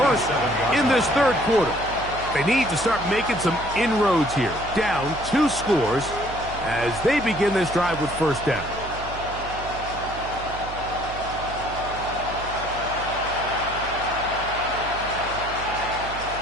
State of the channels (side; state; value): right; noise; hum, 12 dB below the sound